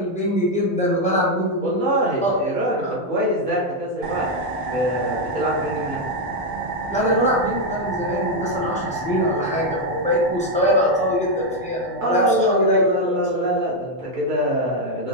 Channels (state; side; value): normal; both; correlation 0.02